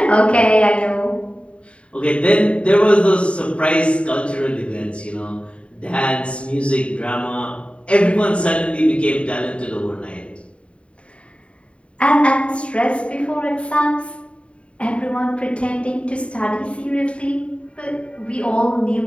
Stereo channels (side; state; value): right; late; 0.060 ms